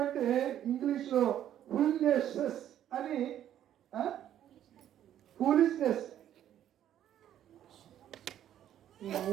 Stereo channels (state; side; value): quieter; left; 11.0 dB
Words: అంటే ఇంగ్లీష్ లో ఫూలిష్నెస్ అని, ఫూలిష్నెస్.